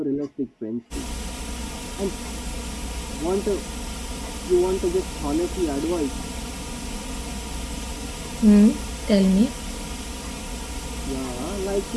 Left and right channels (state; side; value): identical; both; correlation 1.00